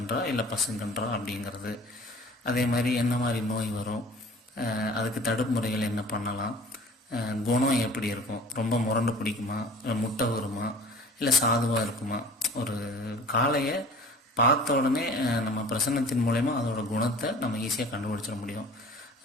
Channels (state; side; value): normal; both; correlation 0.44